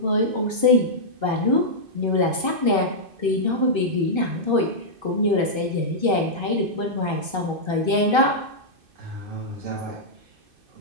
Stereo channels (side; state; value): left; late; 2.5 ms